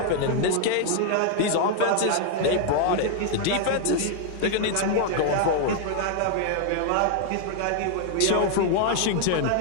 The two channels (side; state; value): both; different; correlation 0.00